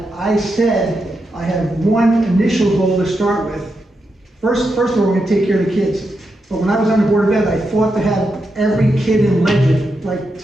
I said I have one initial goal to start with. First of all, we're going to take care of the kids. But when I was on the Board of Ed, I fought to have every kid in Legend, like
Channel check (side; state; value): both; normal; correlation 0.85